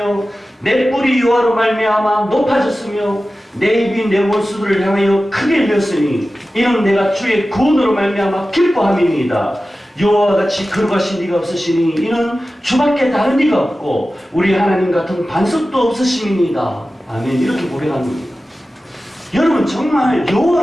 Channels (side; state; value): both; normal; correlation 0.95